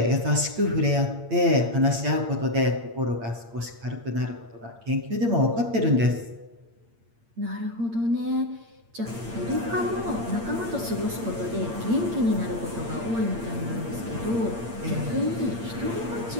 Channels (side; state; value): left; late; 8.7 ms